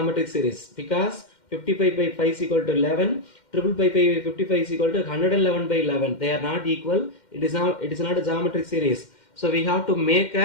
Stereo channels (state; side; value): late; right; 2.1 ms